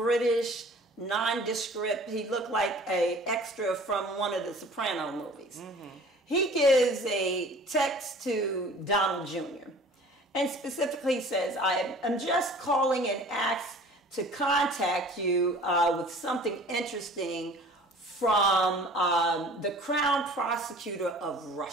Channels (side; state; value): both; normal; correlation 0.47